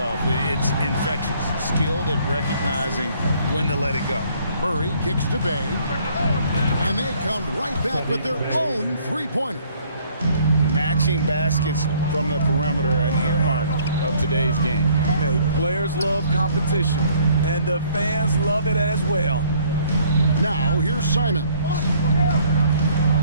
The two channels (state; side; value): inverted; both; correlation -0.61